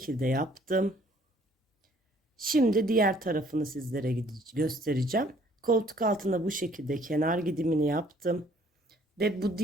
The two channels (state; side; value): normal; both; correlation 0.60